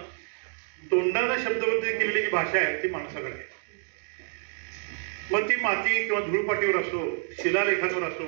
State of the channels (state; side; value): silent; left; 57 dB below the other